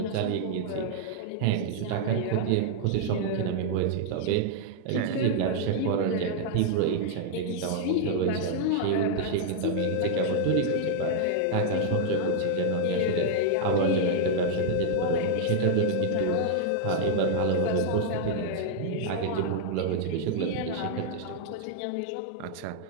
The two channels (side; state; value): both; different; correlation 0.00